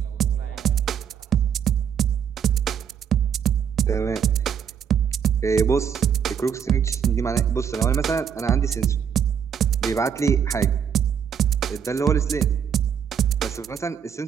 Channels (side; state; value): left; quieter; 8.0 dB